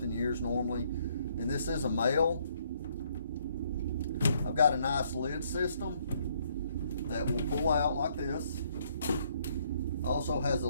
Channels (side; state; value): both; inverted; correlation -0.68